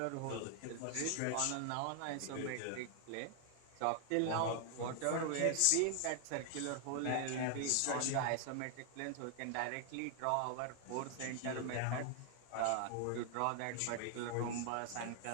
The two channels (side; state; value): both; different; correlation 0.00